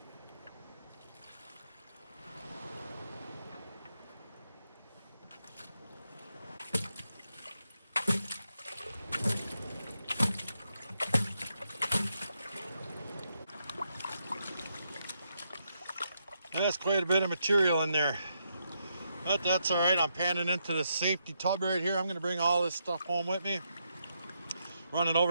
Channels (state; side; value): inverted; both; correlation -0.80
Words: That's quite a bit of material in there. But that's all right. I'm panning into the safety tub right here. I'm going to bring all this stuff home with me. Run it